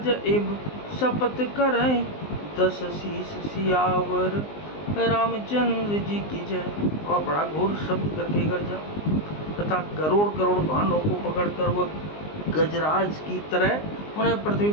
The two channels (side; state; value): right; late; 19 ms